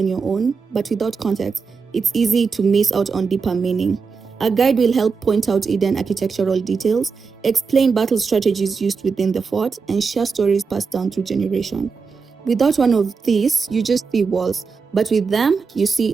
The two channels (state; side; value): quieter; left; 5.1 dB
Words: your own, but without context, it's easy to miss out on deeper meaning. A guide will help point out hidden architectural details, explain battle strategies used within the fort, and share stories passed down through generations. Without one of these, you just see walls, but with them, you see